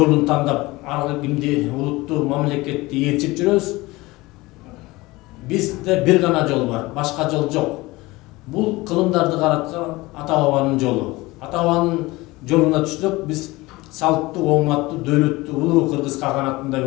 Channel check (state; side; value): quieter; right; 21.0 dB